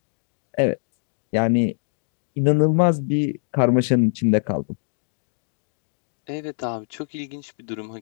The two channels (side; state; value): right; silent; 63 dB below the other